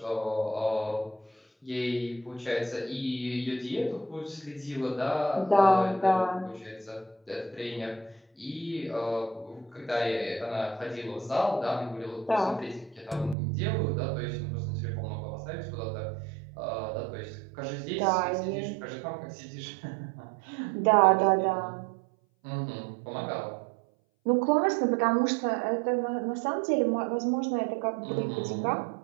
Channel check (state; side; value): drops out; left; at 13.4 s